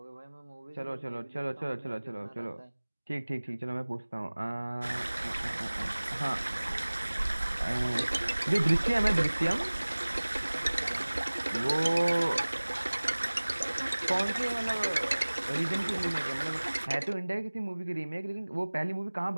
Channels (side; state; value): both; inverted; correlation -1.00